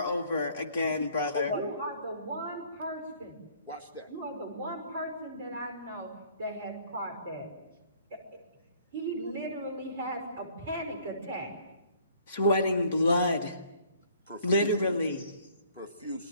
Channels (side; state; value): both; inverted; correlation -0.58